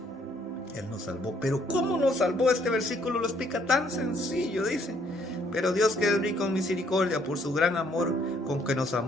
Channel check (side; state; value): both; normal; correlation 0.67